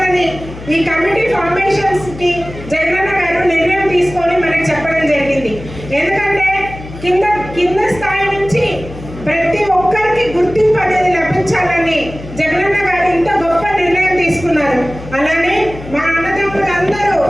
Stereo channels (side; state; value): left; noise; hum, 14 dB below the sound